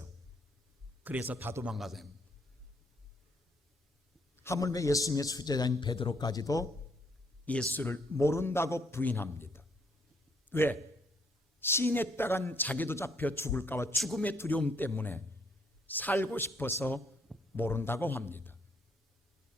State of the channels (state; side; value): normal; both; correlation 0.69